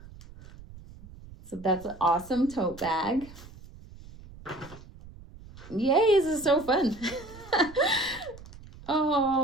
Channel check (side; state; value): right; noise; rumble, 18 dB below the sound